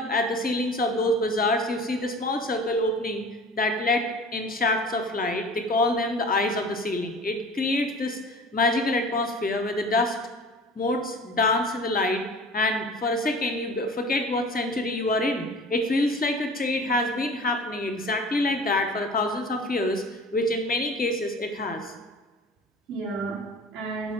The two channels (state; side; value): normal; both; correlation 0.41